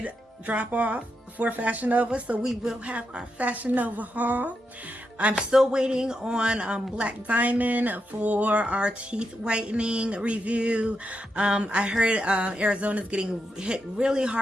drop off for Fashion Nova, so we will have our Fashion Nova haul. I'm still waiting on Black Diamond for our teeth whitening review. I heard Arizona's getting hit really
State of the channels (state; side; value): normal; both; correlation 0.85